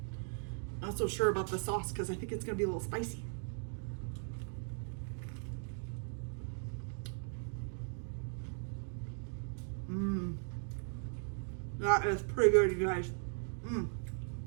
Not so sure about the sauce because I think it's gonna be a little spicy. That is pretty good, you guys.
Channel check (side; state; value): left; silent; 52 dB below the other